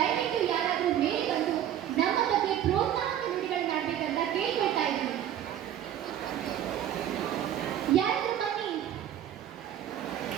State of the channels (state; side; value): quieter; left; 10.9 dB